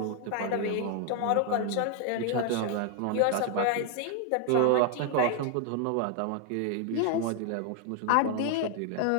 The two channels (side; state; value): both; different; correlation 0.00